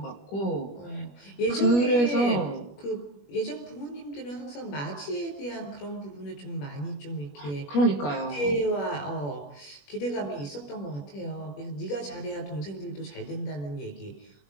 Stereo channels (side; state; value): right; late; 21 ms